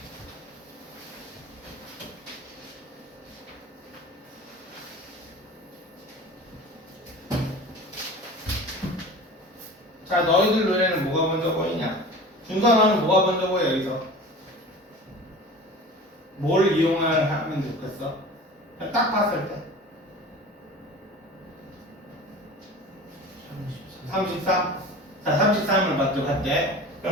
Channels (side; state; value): both; normal; correlation 0.38